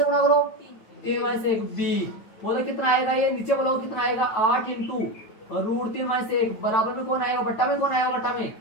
गुणा करो, 3 - 1 b, बोलो कितना आएगा, ये नीचे बोलो कितना आएगा, 8 × √3 - 1 बराबर में कौन आएगा, बट्टा में कौन आएगा, बट्टा में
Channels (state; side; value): late; right; 9.2 ms